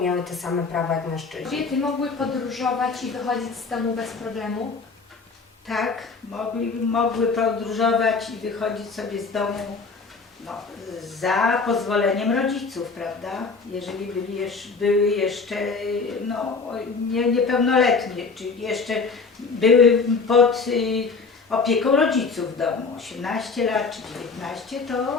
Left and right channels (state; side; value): quieter; right; 4.5 dB